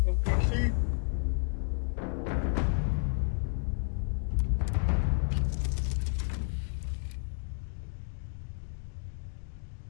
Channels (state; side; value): silent; right; digital silence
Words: On the PC.